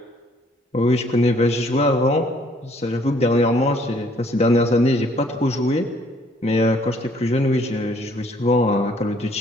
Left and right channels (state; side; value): normal; both; correlation 0.62